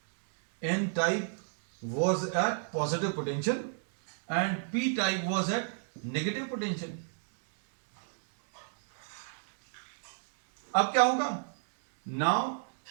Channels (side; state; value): left; silent; digital silence